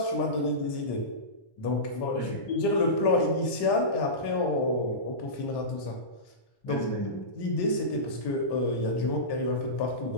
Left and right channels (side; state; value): right; late; 1.1 ms